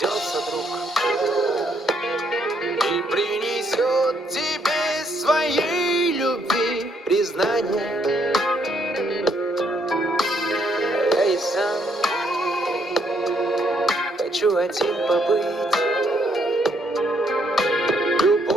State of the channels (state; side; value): normal; both; correlation 0.72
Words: друг и принесет тебе своей любви признание. Я и сам хочу один побыть.